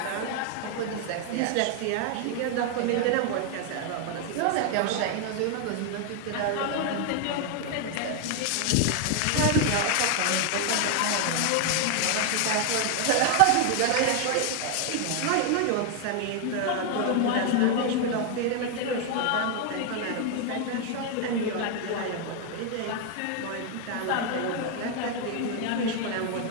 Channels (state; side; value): different; both; correlation 0.00